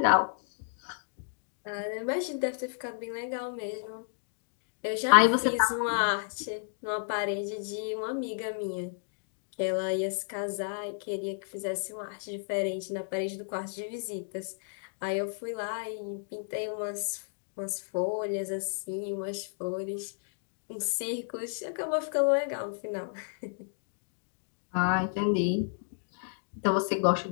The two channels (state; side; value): silent; right; digital silence